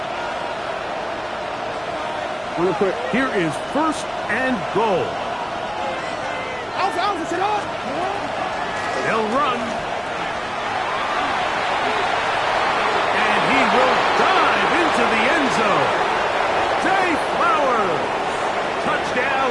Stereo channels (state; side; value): identical; both; correlation 1.00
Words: Here is 1st and goal. They'll run. And he will dive into the end zone. Zay Flowers. Touchdown,